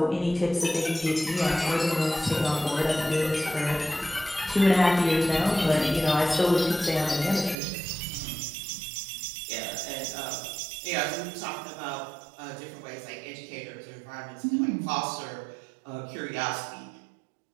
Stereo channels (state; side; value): drops out; left; at 7.6 s